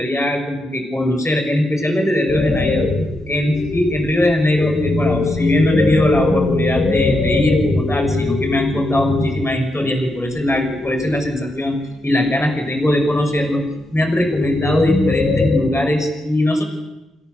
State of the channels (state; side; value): normal; both; correlation 0.83